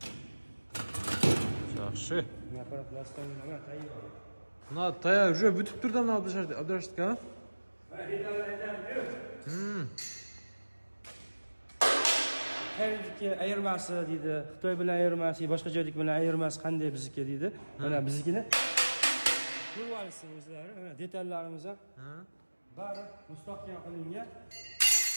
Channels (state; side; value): inverted; both; correlation -1.00